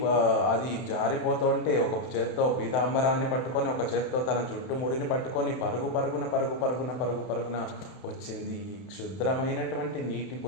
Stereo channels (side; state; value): right; late; 31 ms